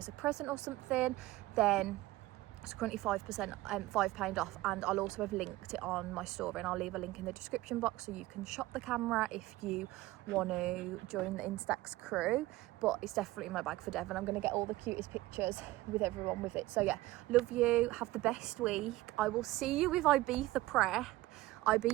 a present or something, then it's currently £5 off. And I'll also have linked it on my story, and I'll leave a link in the description box so you can shop the camera if you want to join the Instax crew. But it's definitely in my bag for Devon. I'm going to get all the cutest pictures with everyone with it. So yeah, love you, have the best week. I will see you with Ibiza prep,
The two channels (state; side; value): quieter; left; 18.1 dB